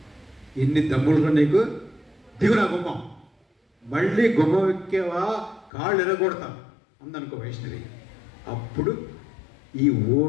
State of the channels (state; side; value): drops out; right; at 5.7 s